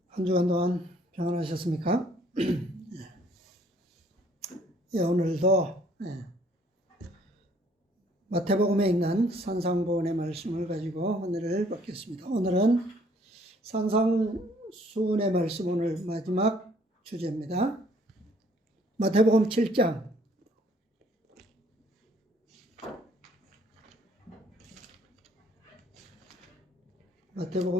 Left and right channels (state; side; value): normal; both; correlation 0.62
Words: 한 주간 동안 평안하셨습니까? 예, 오늘도 마태복음에 있는 산상보훈의 말씀을 가지고 은혜를 받겠습니다. 오늘은 산상수훈의 말씀, 오늘 마지막 주제입니다. 마태복음 7장